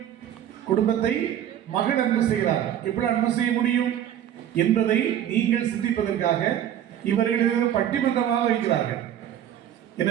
குடும்பத்தை மகன் அன்பு செய்கிறார், எப்படி அன்பு செய்ய முடியும் என்பதை நீங்கள் சிந்திப்பதற்காக இவர்கள் பட்டிமன்றமாக வைக்கிறார்கள்.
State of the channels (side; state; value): left; quieter; 10.6 dB